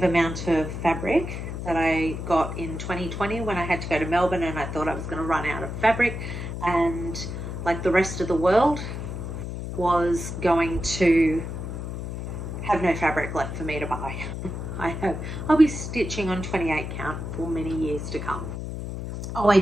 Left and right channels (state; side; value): noise; left; hum, 6 dB below the sound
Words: amount of fabric that I got in 2020 when I had to go to Melbourne, and I thought I was going to run out of fabric, and like the rest of the world was going to have no fabric left for me to buy. I'll be stitching on 28 count for many years to come. Oh, I